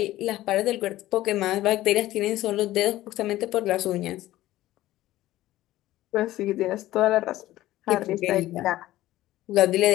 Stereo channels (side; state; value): right; quieter; 15.6 dB